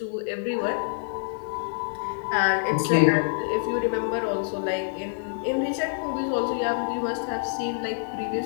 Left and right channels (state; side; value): silent; right; digital silence